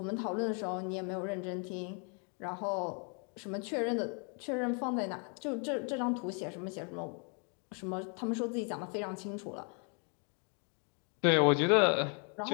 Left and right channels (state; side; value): quieter; right; 38.5 dB